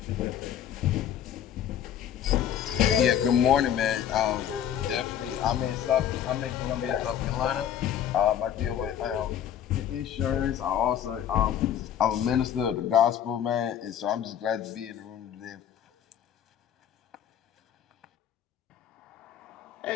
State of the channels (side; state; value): right; quieter; 9.8 dB